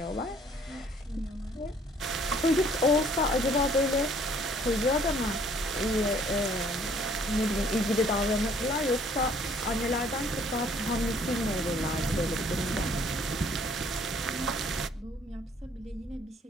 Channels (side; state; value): both; normal; correlation 0.59